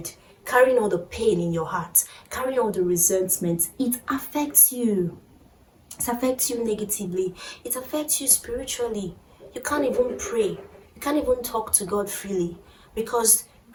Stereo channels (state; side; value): identical; both; correlation 1.00